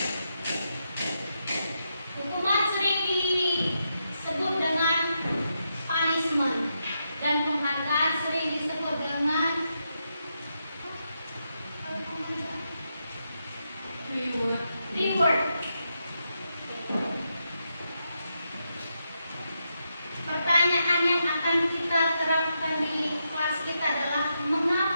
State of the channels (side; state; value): both; inverted; correlation -0.84